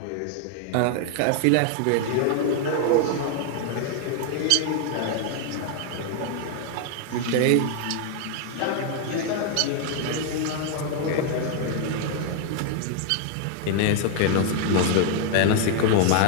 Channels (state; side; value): different; both; correlation 0.00